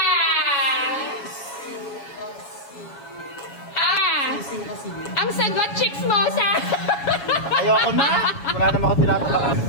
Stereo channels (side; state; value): right; late; 7.2 ms